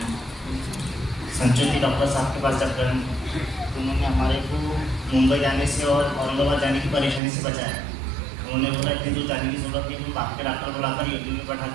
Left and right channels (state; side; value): drops out; left; at 7.2 s